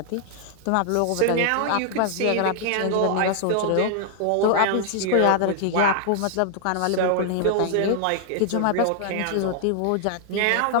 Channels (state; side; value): different; both; correlation 0.00